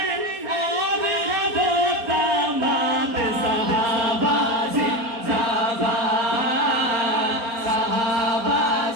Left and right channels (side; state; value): left; late; 4.4 ms